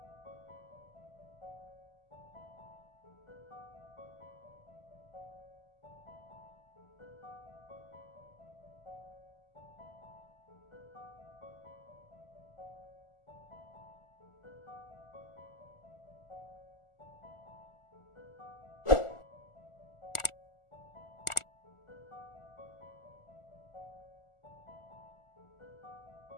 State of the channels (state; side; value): late; right; 1.4 ms